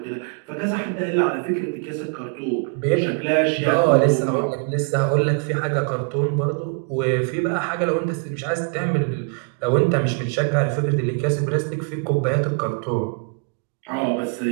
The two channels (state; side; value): quieter; left; 37.9 dB